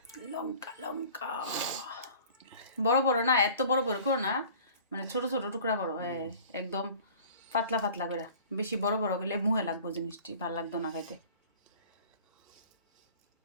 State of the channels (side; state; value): both; inverted; correlation -0.46